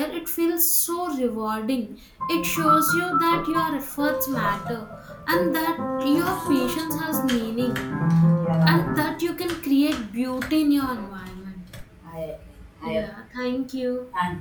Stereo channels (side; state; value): both; identical; correlation 1.00